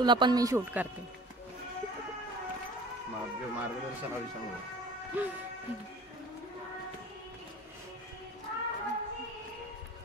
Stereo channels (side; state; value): both; normal; correlation 0.44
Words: पण मी शूट करते.